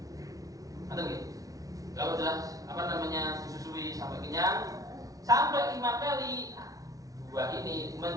Atau gitu. Kalau sudah disusui sampai kenyang sampai 5 kali, 2 ini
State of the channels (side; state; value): left; late; 0.17 ms